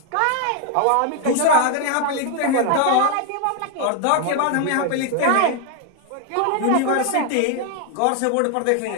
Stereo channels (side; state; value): both; different; correlation 0.00